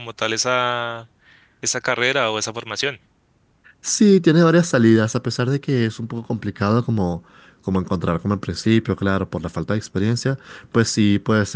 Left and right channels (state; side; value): identical; both; correlation 1.00